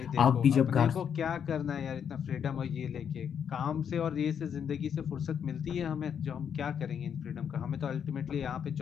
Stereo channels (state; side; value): quieter; right; 7.9 dB